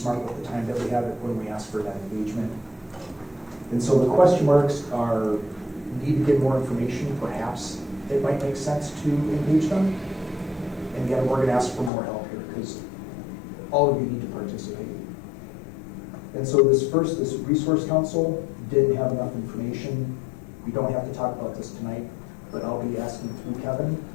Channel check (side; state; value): right; drops out; at 11.9 s